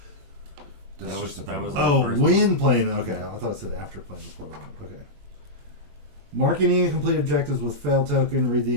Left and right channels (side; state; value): left; late; 21 ms